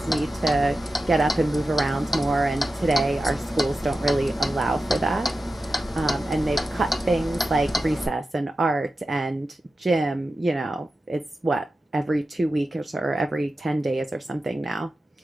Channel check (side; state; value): both; normal; correlation 0.92